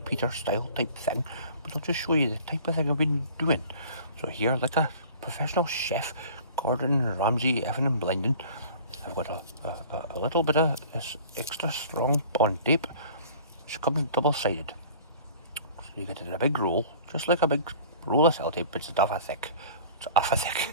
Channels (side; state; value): both; inverted; correlation -0.46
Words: style type thing, but I'll just show you the type of thing I've been doing. So here, like a professional chef, Gordon Ramsay effing and blinding, I've got a little bit of this extra strong bond tape, which comes double-sided. So you get it in a big roll, just like a big roll of sellotape, but it's half a thick. It's half a